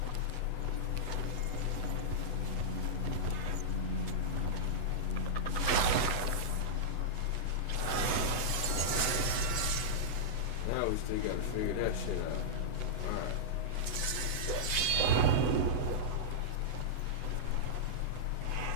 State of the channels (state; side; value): late; right; 8.0 ms